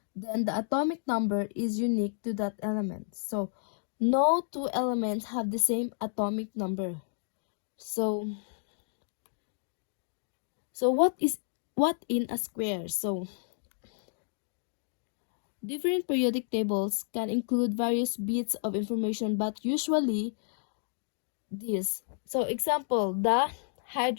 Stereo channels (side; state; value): right; silent; digital silence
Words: Then, the atomic number is unique to that element. So, no two elements have the same atomic number. So, what in a square? So, different periodic tables can include various bits of information, but usually this. So, example, the